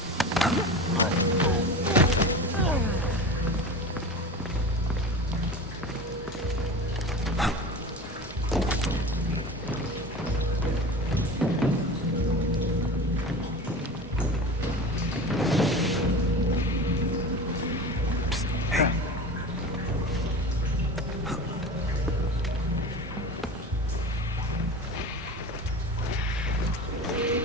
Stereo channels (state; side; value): normal; both; correlation 0.32